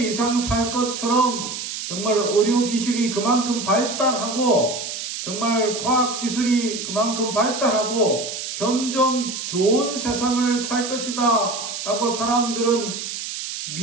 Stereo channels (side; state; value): right; noise; hiss, 6 dB below the sound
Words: 이상 살 것처럼 정말 의료기술이 그만큼 발달하고, 정말 과학기술이 그만큼 발달하고 점점 좋은 세상을 살 것이다 라고 사람들은